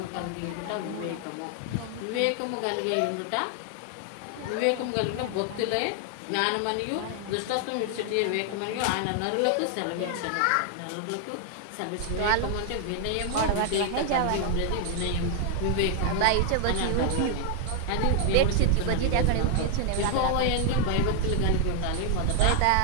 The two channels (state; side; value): different; both; correlation 0.00